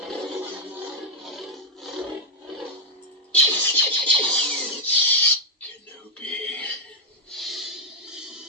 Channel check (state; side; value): normal; both; correlation 0.00